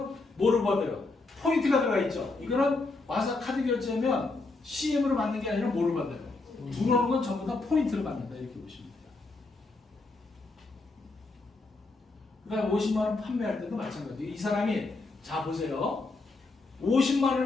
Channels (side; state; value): right; quieter; 3.5 dB